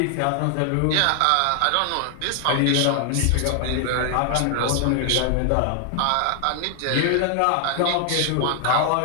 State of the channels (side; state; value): both; different; correlation 0.00